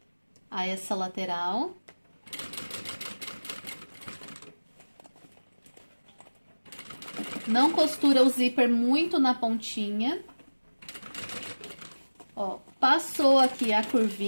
a essa lateral. Não costura o zíper muito na pontinha. Ó, passou aqui a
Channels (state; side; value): inverted; both; correlation -1.00